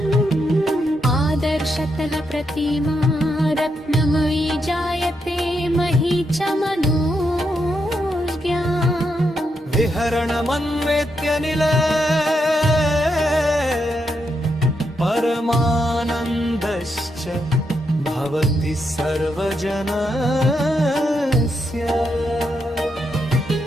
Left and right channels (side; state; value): both; normal; correlation 0.81